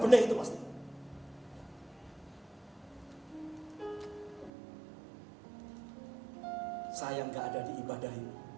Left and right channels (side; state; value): left; drops out; at 4.5 s